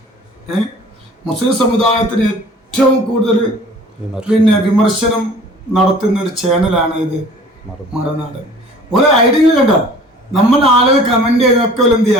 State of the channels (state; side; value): normal; both; correlation 0.48